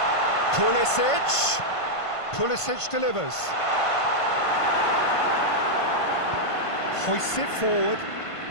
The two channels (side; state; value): right; late; 1.5 ms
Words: Pulisic. Pulisic delivers. Hoists it forward.